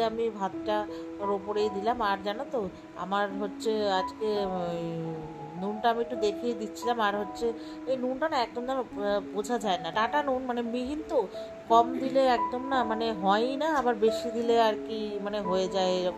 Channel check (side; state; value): both; identical; correlation 1.00